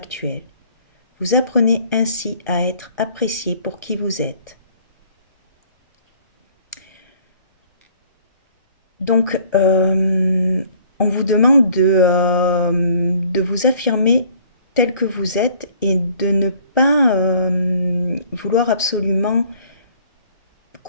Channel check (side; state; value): both; inverted; correlation -0.56